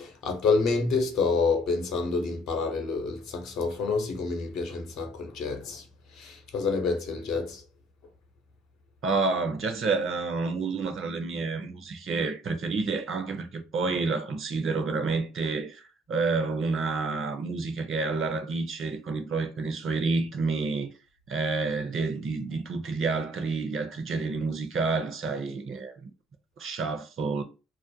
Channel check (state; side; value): normal; both; correlation 0.61